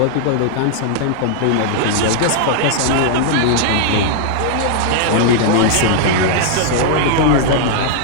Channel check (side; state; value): both; different; correlation -0.01